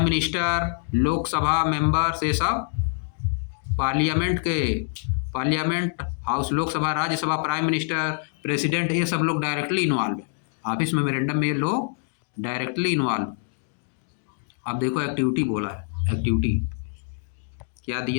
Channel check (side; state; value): right; silent; 62 dB below the other